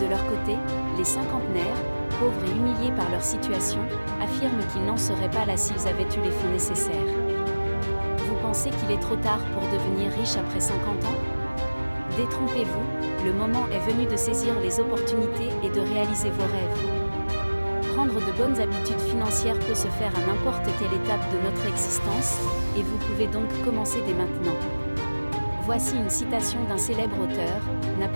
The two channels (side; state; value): both; inverted; correlation -1.00